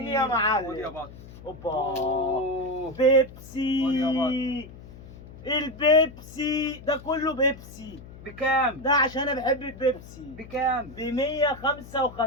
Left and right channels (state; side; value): noise; left; hum, 17 dB below the sound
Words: يا خد يا معلم. بطل. اوبا أوه. خد بيبسي. يا البيبسي ده كله بيبسي. بكام؟ ده عشان انا بحب البيبسي. بكام؟ ب